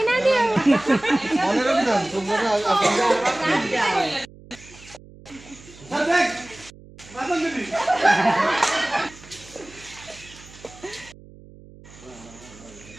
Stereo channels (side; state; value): right; noise; hum, 21 dB below the sound